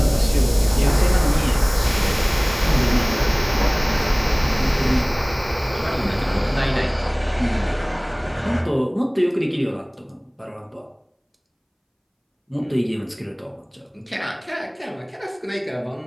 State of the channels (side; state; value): both; identical; correlation 1.00